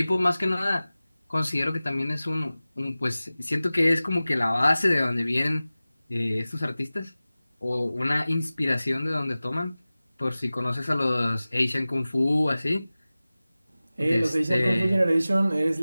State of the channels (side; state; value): both; inverted; correlation -0.97